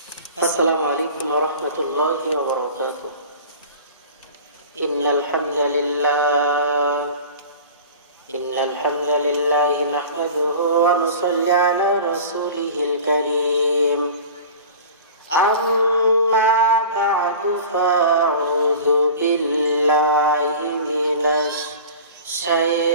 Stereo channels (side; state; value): both; inverted; correlation -0.38